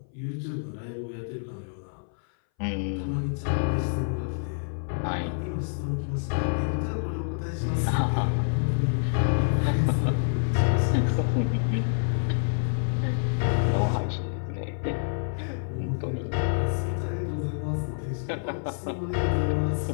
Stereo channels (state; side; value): silent; right; 60 dB below the other